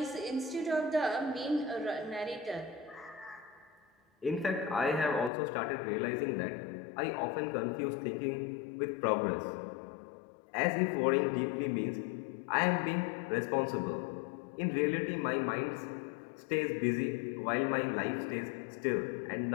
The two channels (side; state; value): right; drops out; at 5.3 s